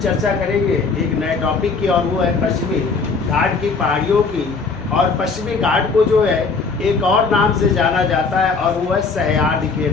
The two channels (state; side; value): quieter; right; 4.6 dB